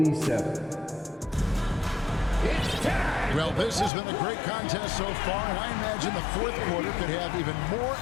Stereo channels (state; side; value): drops out; right; at 3.9 s